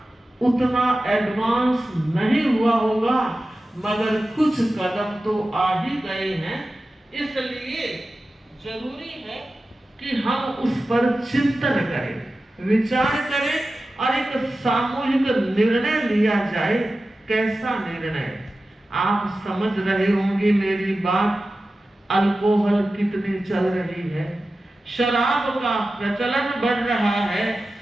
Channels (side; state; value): both; normal; correlation 0.94